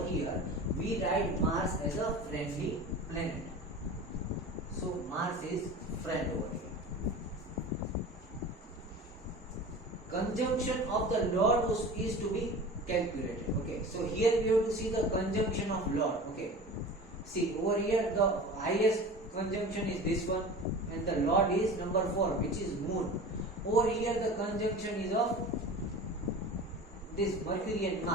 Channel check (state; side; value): normal; both; correlation 0.35